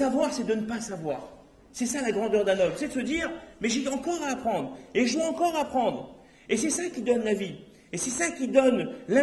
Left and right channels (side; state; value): both; identical; correlation 1.00